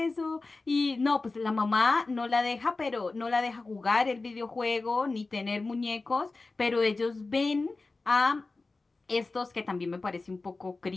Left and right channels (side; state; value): right; quieter; 3.6 dB